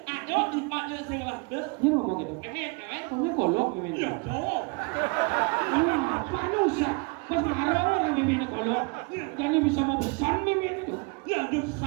à đó thì bạn lên xem là được Dia ngomong gitu. cái biển cái Kamu kolok meme. hiểu chỗ Manusia. Masa ada orang meme kolok. Karena bisa mau pesan meme itu. hiểu được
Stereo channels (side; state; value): left; quieter; 30.7 dB